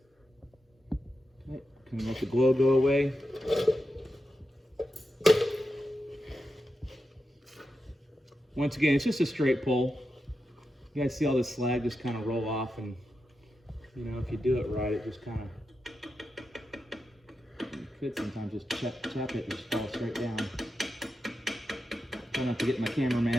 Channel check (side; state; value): both; normal; correlation 0.89